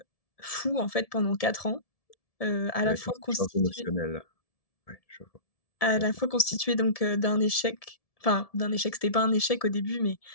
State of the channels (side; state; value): right; late; 1.7 ms